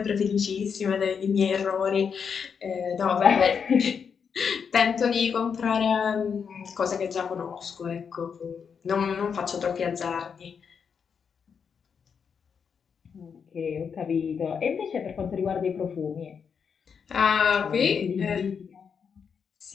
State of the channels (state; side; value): quieter; right; 6.5 dB